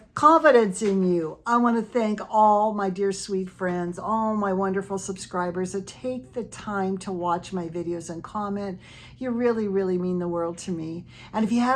confidence in you. I want to thank all my dear sweet friends, all my wonderful subscribers that take the time to watch my videos and comment. You really, really mean the world to me. And if you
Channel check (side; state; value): both; identical; correlation 1.00